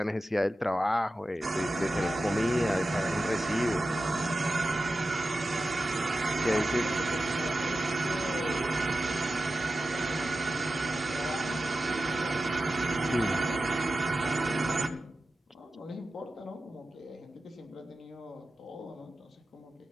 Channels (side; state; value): both; normal; correlation 0.93